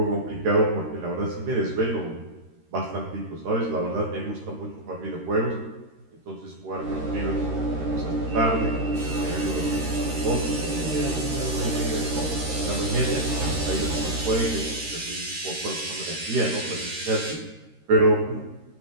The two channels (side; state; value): left; late; 13 ms